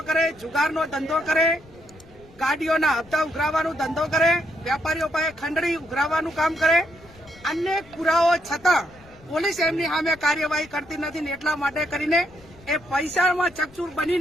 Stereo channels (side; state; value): left; noise; rumble, 24 dB below the sound